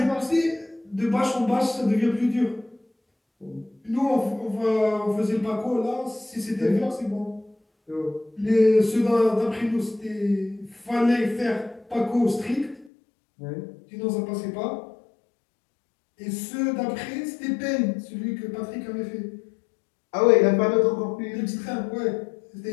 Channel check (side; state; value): right; drops out; at 12.9 s